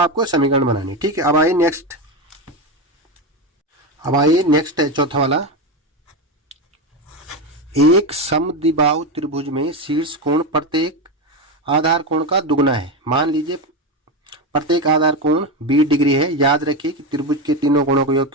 समीकरण बनानी। ठीक है, अब आइए नेक्स्ट है चौथा वाला। एक समद्विबाहु त्रिभुज में शीर्ष कोण प्रत्येक आधार कोण का दुगुना है। मान लीजिए प्रत्येक आधार कोण 20 डिग्री है। याद रखिए कि त्रिभुज के तीनों कोणों का योग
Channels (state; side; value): normal; both; correlation 0.15